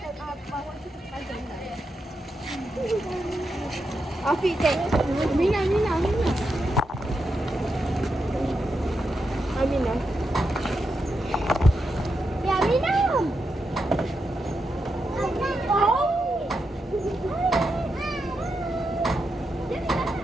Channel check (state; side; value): normal; both; correlation 0.85